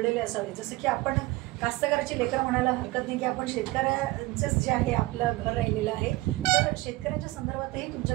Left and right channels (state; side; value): quieter; left; 20.0 dB